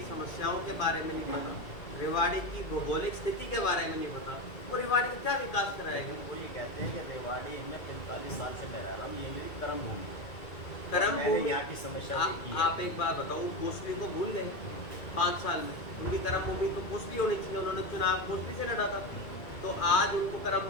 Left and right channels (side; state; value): right; late; 2.3 ms